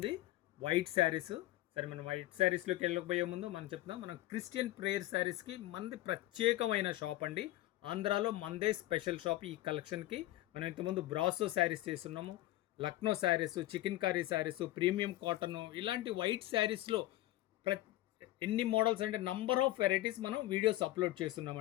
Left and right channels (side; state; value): right; quieter; 16.2 dB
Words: వైట్ శారీస్. సరే, మనం వైట్ శారీస్లోకి వెళ్ళకపోయే ముందు మనం చెప్తాం, మనం క్రిస్టియన్ ప్రేయర్ శారీస్కి మనది ప్రత్యేకమైన షాప్ అండి. ఆంధ్రాలో మనదే స్పెషల్ షాప్ ఈ కలెక్షన్కి. మనం ఇంతకుముందు బ్రాసో శారీస్ చేస్తున్నాము, Lucknow saris, chicken curry saris, premium cotton, ఇలాంటి వైట్ శారీస్లో ఎన్ని మోడల్స్ అంటే నంబర్ ఆఫ్ వెరైటీస్ మనం వీడియోస్ అప్లోడ్